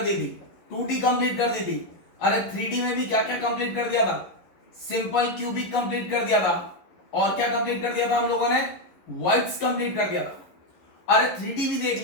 दी थी, 2D कंप्लीट कर दी थी। अरे 3D में भी क्या क्या कंप्लीट कर दिया था। सिंपल क्यूबिक कंप्लीट कर दिया था। और क्या कंप्लीट कर दिया था हम लोगों ने, वर्ड्स कंप्लीट कर दिया था। अरे 3D भी देख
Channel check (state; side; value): late; right; 11 ms